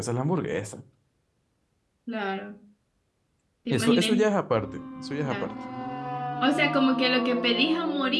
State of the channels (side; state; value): both; identical; correlation 1.00